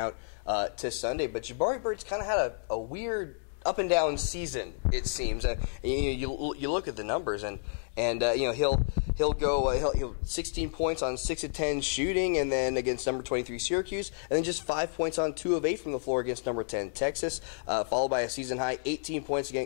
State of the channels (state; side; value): silent; right; digital silence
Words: to Sunday. But Jabari Bird's kind of had a weird up and down season, it seems. You look at the numbers, and he'll go 16 points on 6 of 10 shooting, and then against number 23 Syracuse, and then just 5 points on 2 of 8 from the floor against number 10 Texas, followed by a season high 18 points